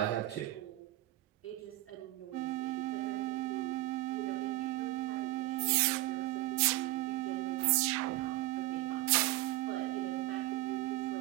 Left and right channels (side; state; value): left; quieter; 16.9 dB